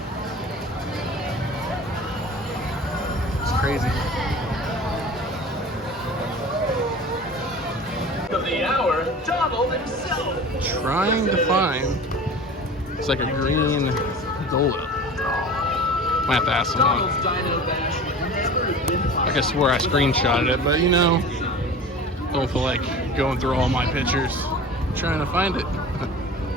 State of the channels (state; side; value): normal; both; correlation 0.38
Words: It's crazy. Of the hour, Donald himself. Trying to find, it's like a green Dole Whip. Might have to ask someone. Donald's Dino Bash would never have been possible. I could swear I screenshotted it, but you know, don't feel like going through all my pictures trying to find it.